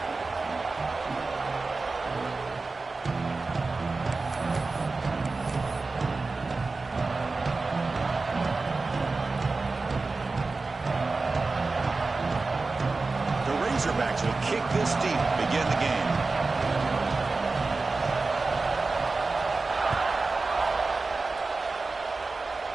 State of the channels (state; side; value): quieter; left; 3.8 dB